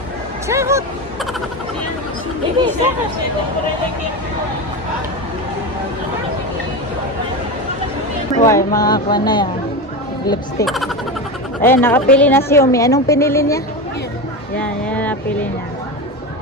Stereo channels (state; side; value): normal; both; correlation 0.20